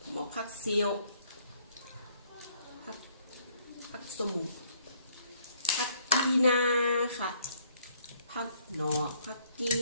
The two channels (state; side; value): inverted; both; correlation -0.65